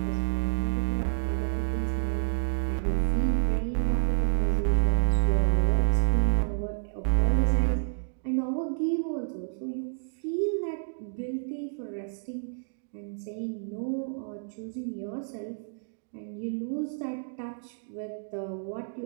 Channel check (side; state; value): left; silent; digital silence